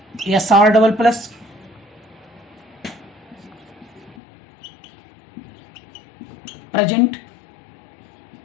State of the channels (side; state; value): right; drops out; at 4.2 s